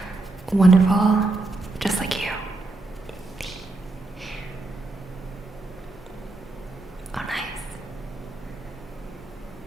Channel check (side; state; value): left; quieter; 3.1 dB